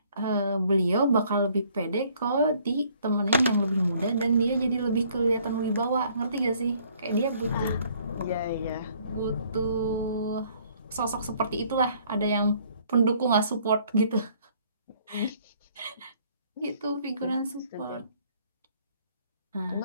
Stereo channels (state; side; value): inverted; both; correlation -0.62